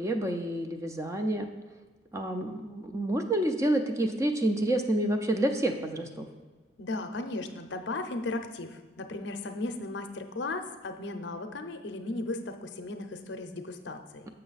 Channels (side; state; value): both; normal; correlation 0.66